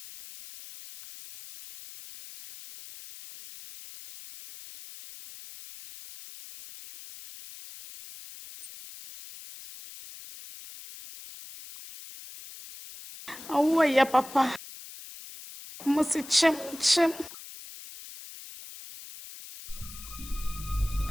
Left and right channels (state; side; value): noise; left; hiss, 15 dB below the sound